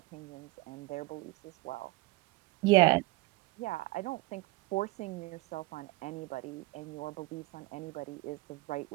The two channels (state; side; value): quieter; left; 21.3 dB